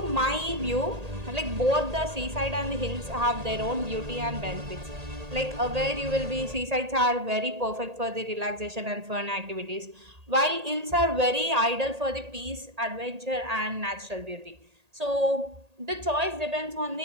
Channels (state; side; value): late; left; 1.8 ms